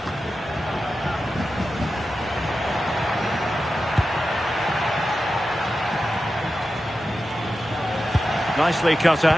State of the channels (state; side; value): normal; both; correlation 0.92